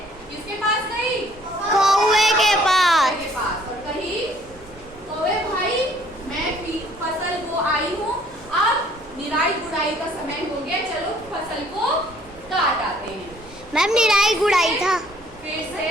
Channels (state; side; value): noise; right; rumble, 22 dB below the sound